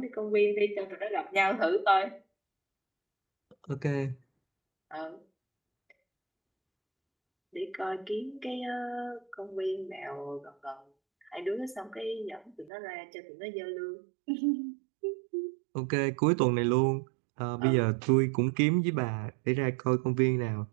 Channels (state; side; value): drops out; left; at 12.7 s